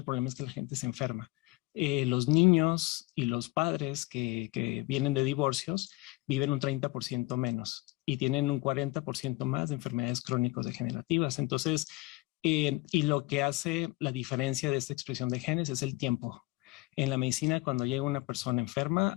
problema es que la gente se enferma. Los niños y los padres que vienen de divorcios viven un 30% menos y tienen un 40% más de enfermedades crónicos degenerativas. Entonces, y lo que hace la diferencia de esta expresión de genes es el tiempo. En la medicina, cuando llega una persona enferma,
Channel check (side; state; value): right; quieter; 21.5 dB